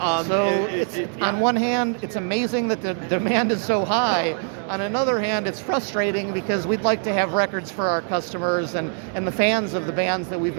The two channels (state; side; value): silent; left; 55 dB below the other